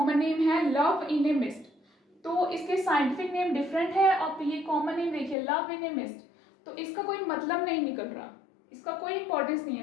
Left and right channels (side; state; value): right; drops out; at 5.4 s